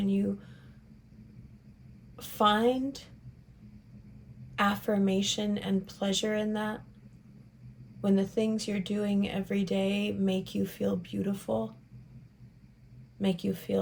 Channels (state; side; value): identical; both; correlation 1.00